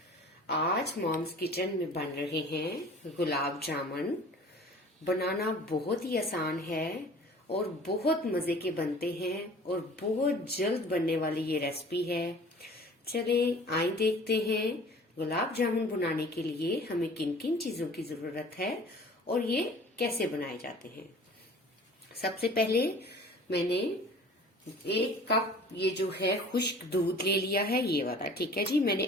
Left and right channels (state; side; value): normal; both; correlation 0.46